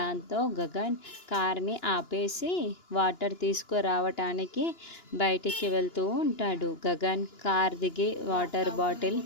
గగన్ కార్ని ఆపేసి వాటర్ తీసుకురావటానికి బయటికి వెళ్తూ ఉంటాడు. గగన్ కార్ దిగి వాటర్ బాటిల్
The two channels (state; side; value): late; right; 2.9 ms